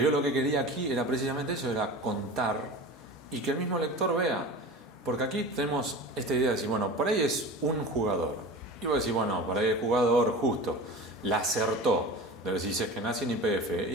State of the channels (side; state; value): both; normal; correlation 0.33